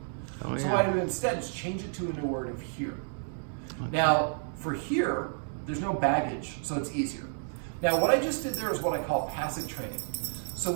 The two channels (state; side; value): silent; left; digital silence